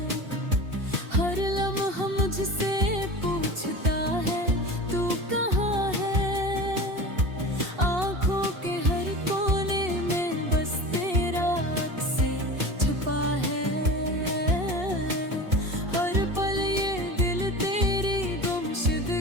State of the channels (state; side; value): late; left; 2.7 ms